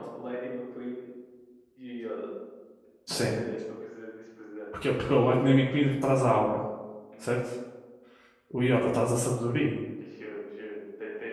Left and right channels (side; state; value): both; identical; correlation 1.00